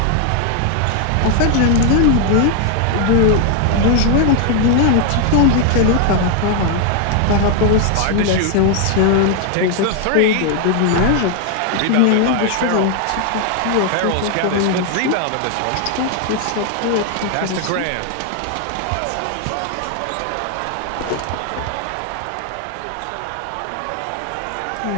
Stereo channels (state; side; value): different; both; correlation 0.00